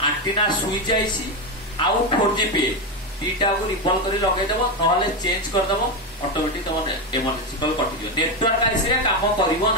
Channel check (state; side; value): normal; both; correlation 0.10